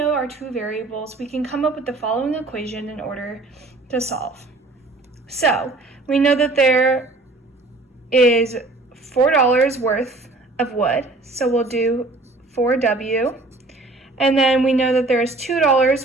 our two variables, we can come up with the following equation in order to solve. So we know that there is $4 worth of wood, so we'll do 4W. And then we know that there is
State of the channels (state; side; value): quieter; left; 3.1 dB